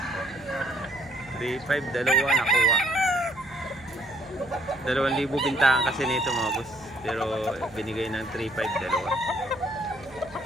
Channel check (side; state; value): right; noise; hum, 22 dB below the sound